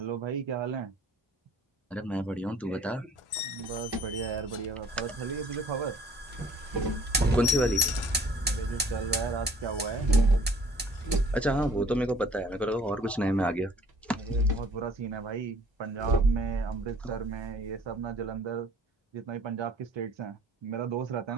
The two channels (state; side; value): normal; both; correlation 0.55